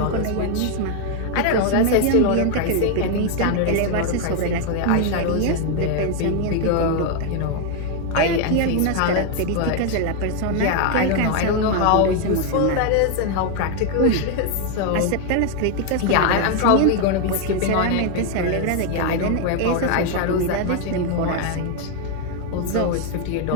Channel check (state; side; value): different; both; correlation 0.01